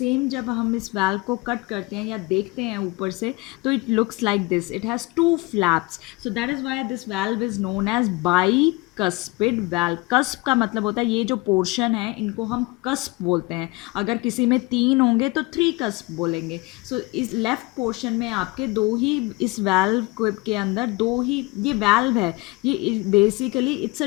जब हम इस वाल्व को कट करते हैं या देखते हैं ऊपर से, तो it looks like this, it has 2 flaps. So that is why this valve is known as bicuspid valve. Cusp का मतलब होता है ये जो पोर्शन है, इनको हम कस्प बोलते हैं. अगर किसी में 3 होंगे तो 3 कस्प बोलेंगे. सो इस लेफ्ट पोर्शन में आपके 2 ही, इस वाल्व के अंदर 2 ही, ये वाल्व है, ये basically it's a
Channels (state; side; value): quieter; right; 23.4 dB